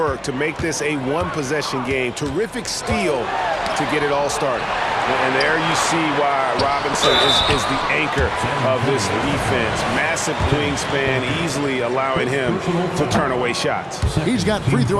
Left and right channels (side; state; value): both; identical; correlation 1.00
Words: to make this a one-possession game. Terrific steal to get it all started. And there you see why Robinson is the anchor of this defense. Massive wingspan, easily allowing him to turn away shots. He's got free